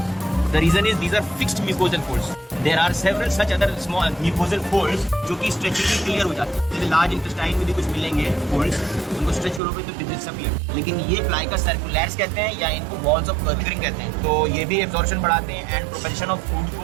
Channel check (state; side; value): drops out; left; at 9.6 s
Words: The reason is these are fixed mucosal folds. There are several such other small mucosal folds जो कि स्ट्रेचिंगली क्लियर हो जाते हैं। जैसे लार्ज इंटेस्टाइन में भी कुछ मिलेंगे folds, उनको स्ट्रेच करोगे तो डिसअपियर। लेकिन ये प्लाइका सर्कुलैर्स कहते हैं या इनको वॉल्स ऑफ कर्विंग कहते हैं। तो ये भी एब्जॉर्प्शन बढ़ाते हैं एंड प्रोपेल्शन ऑफ फूड